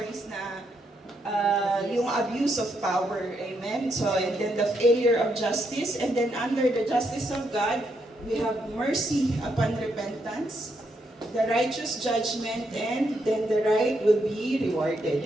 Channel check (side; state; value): both; normal; correlation 0.78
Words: na yung abuse of power, amen? So, and then the failure of justice, and then under the justice of God, we have mercy upon repentance, the righteous judgment, and then the right will be rewarded,